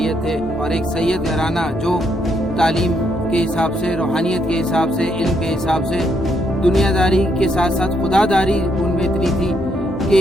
थे और एक सैयद घराना जो तालीम के हिसाब से, रूहानियत के हिसाब से, इल्म के हिसाब से, दुनियादारी के साथ साथ खुदादारी उनमें इतनी थी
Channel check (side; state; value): both; normal; correlation 0.75